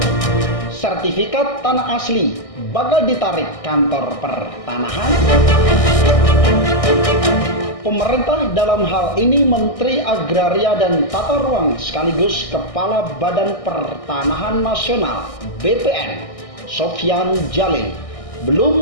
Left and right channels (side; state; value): right; late; 1.6 ms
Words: Sertifikat tanah asli bakal ditarik kantor pertanahan. Pemerintah dalam hal ini Menteri Agraria dan Tata Ruang sekaligus Kepala Badan Pertanahan Nasional BPN Sofyan Djalil